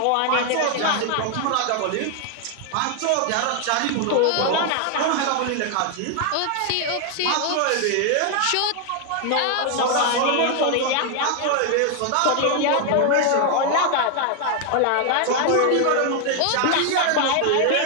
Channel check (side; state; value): both; different; correlation 0.00